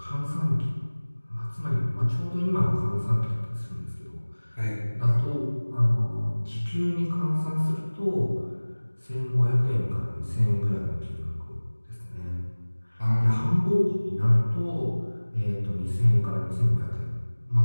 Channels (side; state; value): both; inverted; correlation -1.00